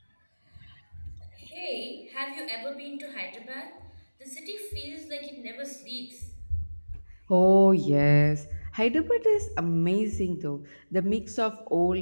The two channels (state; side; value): inverted; both; correlation -1.00